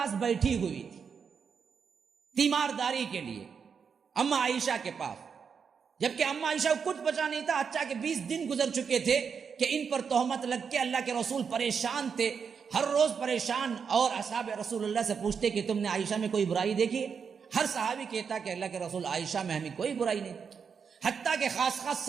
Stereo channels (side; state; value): left; quieter; 6.3 dB